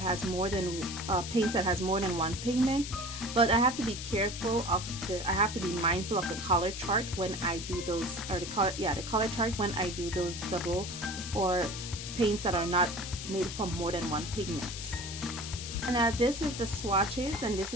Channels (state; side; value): noise; left; hiss, 8 dB below the sound